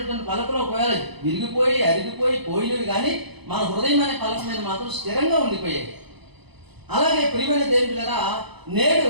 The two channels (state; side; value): late; left; 0.99 ms